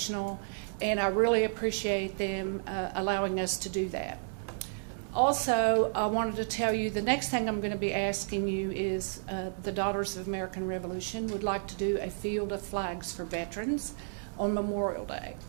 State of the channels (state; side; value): silent; left; digital silence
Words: and I really appreciate them allowing us to do that. Also, I wanted to tell you the next thing I'm going to be asking you is the Daughters of American Revolution would like to do a field of flags for veterans on Memorial Day.